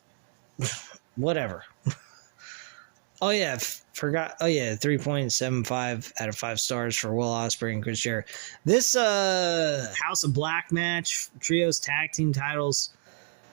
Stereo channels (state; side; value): silent; left; digital silence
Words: whatever. Oh, yeah. Forgot. Oh, yeah. 3.75 out of 5 stars for Will Ospreay and Chris Jericho. This House of Black match, Trios Tag Team titles,